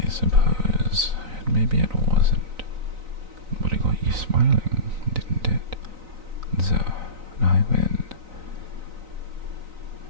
maybe it wasn't, but it got you smiling, didn't it? So, I win.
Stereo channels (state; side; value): late; left; 3.9 ms